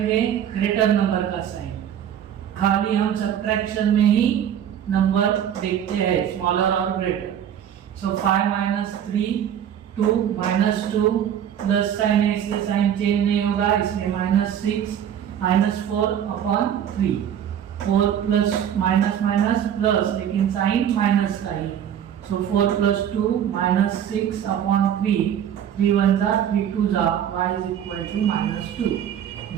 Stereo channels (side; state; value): left; quieter; 9.6 dB